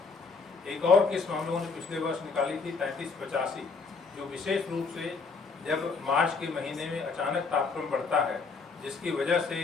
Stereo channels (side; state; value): right; quieter; 4.5 dB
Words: एक और किस्म हम लोगों ने पिछले वर्ष निकाली थी 3385, जो विशेष रूप से जब मार्च के महीने में अचानक तापक्रम बढ़ता है जिसकी वजह से